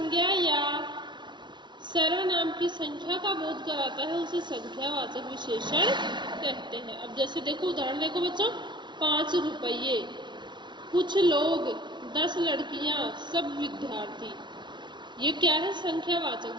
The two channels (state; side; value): late; left; 0.22 ms